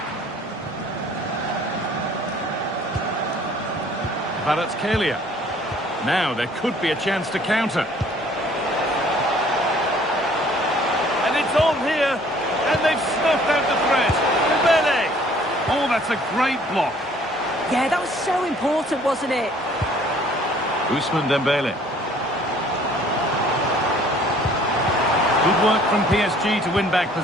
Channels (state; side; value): normal; both; correlation 0.56